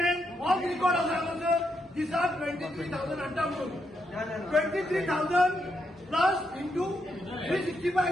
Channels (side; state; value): both; normal; correlation 0.80